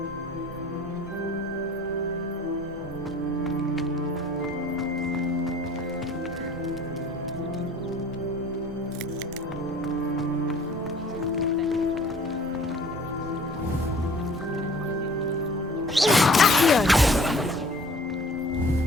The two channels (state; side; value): normal; both; correlation 0.50